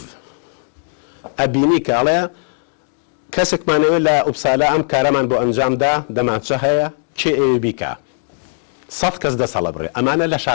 ئەبینی کاڵێ کەسێکمانەوە لە ئوبسالا ئەم کارەمان بۆ ئەنجامدا دەماچە هەیە کێ ئێوە بیکە 100 کەس دەسەڵە بڕێ ئەمانە لە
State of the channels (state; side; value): silent; right; digital silence